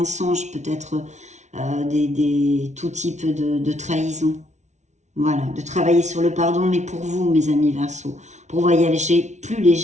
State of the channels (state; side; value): late; left; 0.33 ms